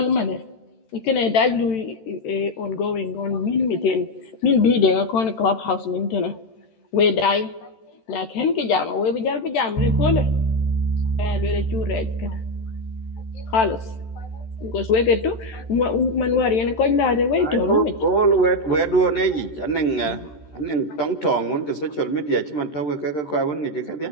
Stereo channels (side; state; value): right; late; 13 ms